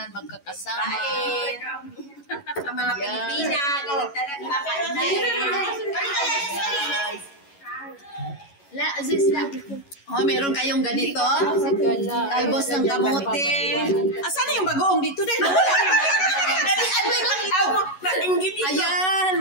magkakasama. Ang mga Pilipina, ganyan talaga kakain. Oh, meron kayong ganito? Talbos ng kamote. Asan yung bagoong dito din? Ayan,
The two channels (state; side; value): late; right; 11 ms